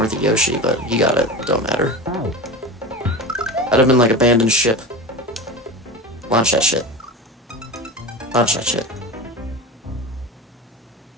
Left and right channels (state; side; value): normal; both; correlation 0.28